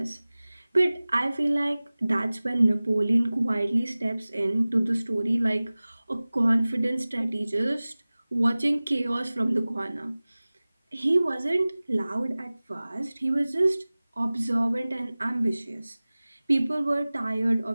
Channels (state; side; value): inverted; both; correlation -0.99